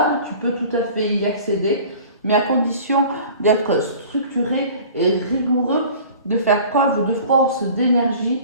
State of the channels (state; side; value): inverted; both; correlation -0.44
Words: tu peux tout à fait y accéder, mais à condition d'être structuré et rigoureux, de faire preuve de force, d'énergie,